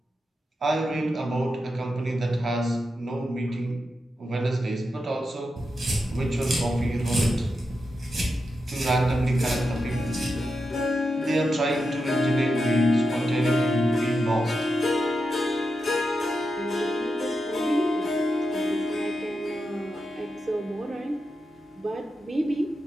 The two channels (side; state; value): both; normal; correlation 0.88